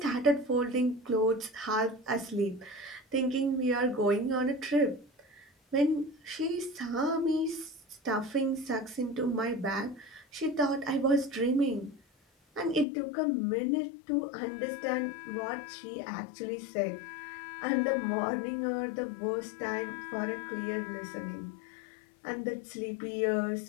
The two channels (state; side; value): drops out; right; at 12.9 s